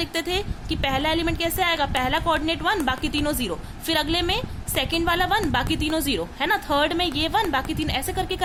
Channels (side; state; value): both; identical; correlation 1.00